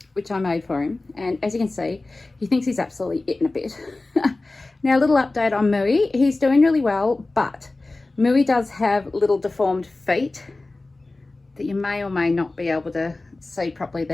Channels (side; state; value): right; quieter; 3.1 dB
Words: which I made for him, and as you can see, he thinks he's absolutely eaten a bit. Now, a little update on Mooey. He's doing really well, but Mooey does have little deformed feet that you may or may not be able to see properly